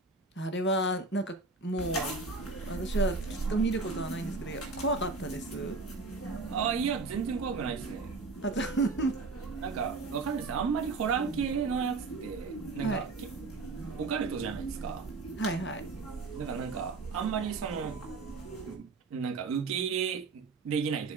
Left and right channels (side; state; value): left; quieter; 3.9 dB